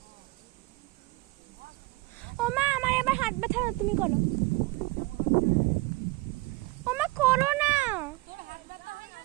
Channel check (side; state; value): left; quieter; 22.7 dB